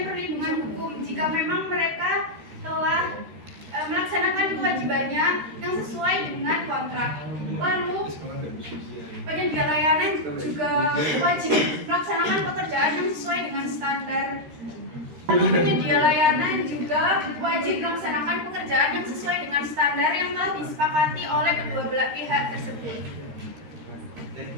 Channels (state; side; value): late; left; 13 ms